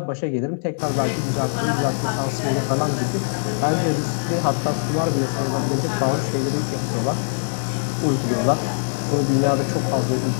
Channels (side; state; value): right; silent; digital silence